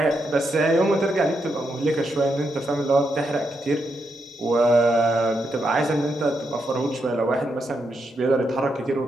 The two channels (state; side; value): normal; both; correlation 0.82